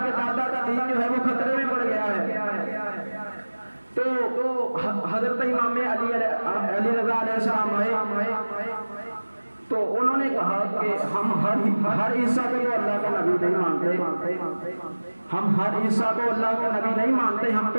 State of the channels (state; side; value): inverted; both; correlation -1.00